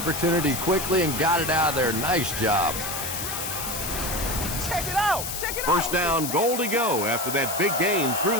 quickly and got it out of there. Nice job. Check it out. Check it out. First down, goal to go after that big gain through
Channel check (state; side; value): noise; left; hiss, 5 dB below the sound